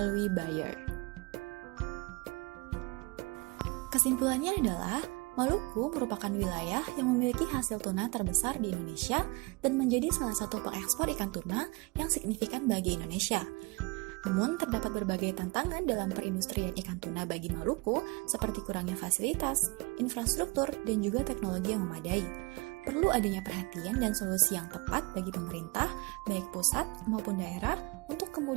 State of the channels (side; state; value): left; quieter; 26.4 dB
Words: buyer. Kesimpulannya adalah, Maluku merupakan wilayah yang memiliki hasil tuna terbesar di Indonesia dan menjadi salah satu pengekspor ikan tuna yang signifikan bagi Indonesia. Namun, terdapat berbagai tantangan dalam perindustrian ikan tuna bagi Maluku, seperti kurangnya fasilitas, infrastruktur, dan juga teknologi yang memadai. Perlu adanya perhatian dan solusi yang tepat bagi pemerintah, baik pusat maupun daerah, untuk